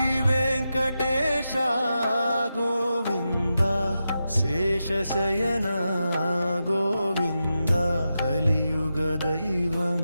వెంకటేశ గోవింద శేషశయన గోవింద కలియుగ దైవం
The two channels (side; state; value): both; inverted; correlation -0.89